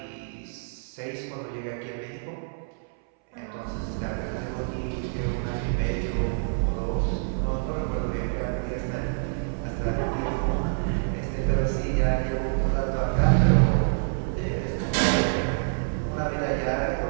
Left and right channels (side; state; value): left; silent; 60 dB below the other